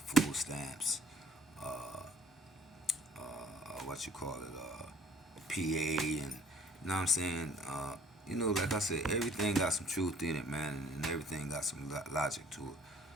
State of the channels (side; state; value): both; normal; correlation 0.56